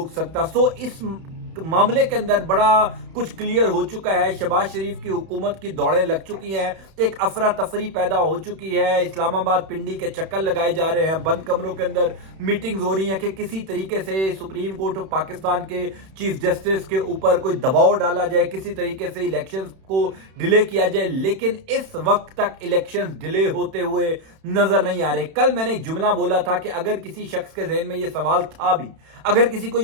سکتا۔ سو اس معاملے کے اندر بڑا کچھ کلیئر ہو چکا ہے، شہباز شریف کی حکومت کی دوڑیں لگ چکی ہیں، ایک افراتفری پیدا ہو چکی ہے، اسلام آباد پنڈی کے چکر لگائے جا رہے ہیں، بند کمروں کے اندر میٹنگز ہو رہی ہیں کہ کسی طریقے سے سپریم کورٹ آف پاکستان کے چیف جسٹس کے اوپر کوئی دباؤ ڈالا جائے، کسی طریقے سے الیکشنز کو ڈیلے کیا جائے، لیکن اس وقت تک الیکشنز ڈیلے ہوتے ہوئے نظر نہیں آ رہے۔ کل میں نے ایک جملہ بولا تھا کہ اگر کسی شخص کے ذہن میں یہ سوال تھا بھی، اگر کسی کو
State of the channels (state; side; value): late; left; 31 ms